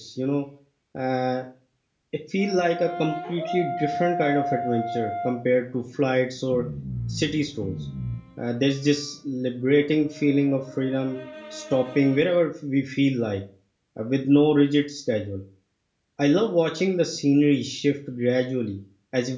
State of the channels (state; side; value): identical; both; correlation 1.00